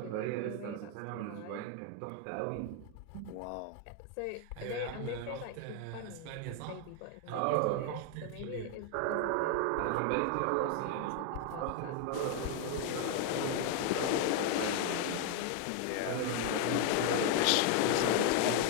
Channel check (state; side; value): different; both; correlation 0.00